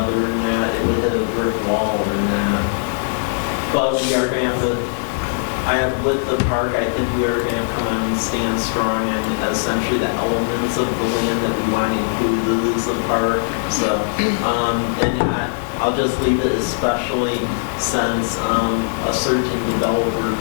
or not it would hit a brick wall or not. But we are going to have to, with the park, I think we are going to come on and stand strong on essentially the elements of the land that we want included as a park. So, and I'll just leave it, especially since a certain developer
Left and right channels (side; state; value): right; silent; 66 dB below the other